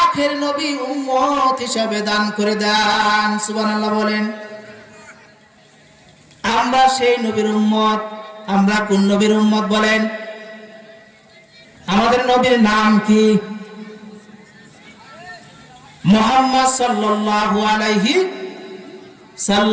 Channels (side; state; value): both; identical; correlation 1.00